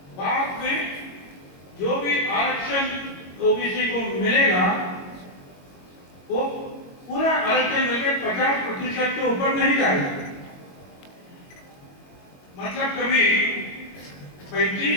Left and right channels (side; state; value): right; late; 22 ms